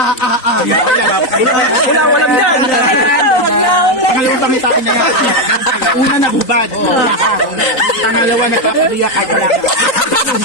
Wala, walang dyan. Pangalawang pangitain na yan. Una na bubad. Pangalawa na papabiyak.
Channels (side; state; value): right; late; 3.8 ms